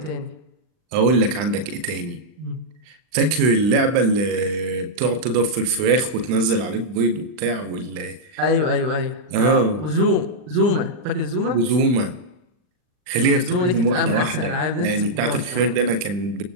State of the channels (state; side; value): late; left; 39 ms